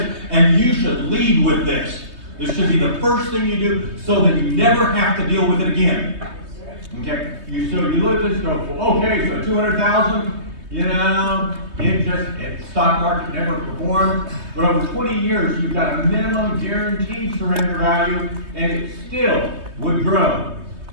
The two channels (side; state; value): left; late; 3.2 ms